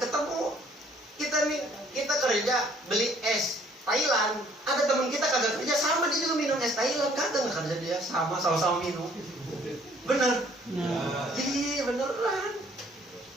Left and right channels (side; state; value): both; normal; correlation 0.60